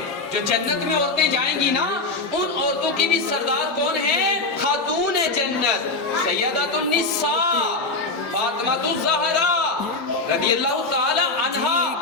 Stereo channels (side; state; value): right; quieter; 3.4 dB